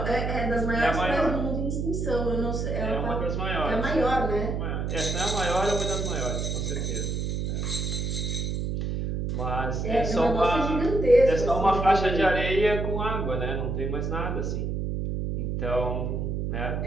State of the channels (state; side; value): noise; right; hum, 1 dB below the sound